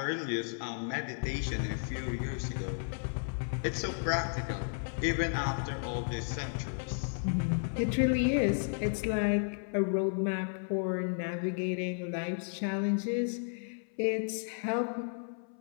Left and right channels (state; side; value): silent; right; 56 dB below the other